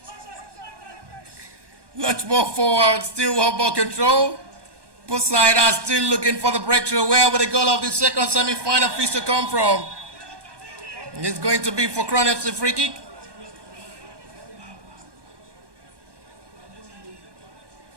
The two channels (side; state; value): left; late; 1.2 ms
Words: Much more forward, still one ball control. Both sides are still looking for the breakthrough. Where will the goal of the second semi-final feast to come from? It's going to be for Crown FC free kick.